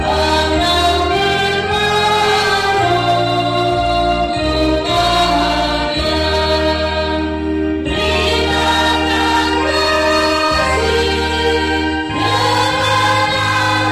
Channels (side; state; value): both; identical; correlation 1.00